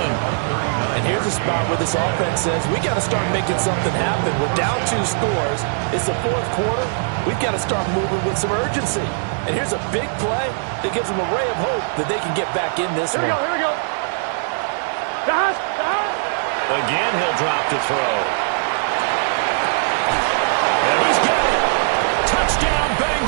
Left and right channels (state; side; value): silent; left; digital silence